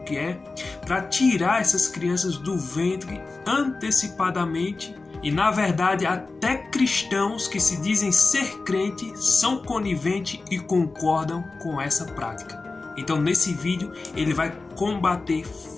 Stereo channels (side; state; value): right; quieter; 3.7 dB